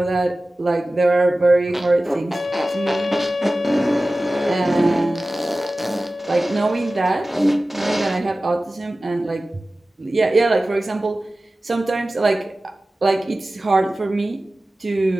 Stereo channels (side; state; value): both; normal; correlation 0.96